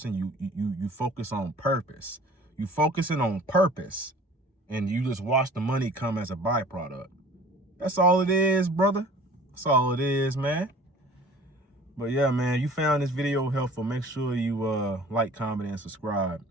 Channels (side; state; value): both; normal; correlation 0.47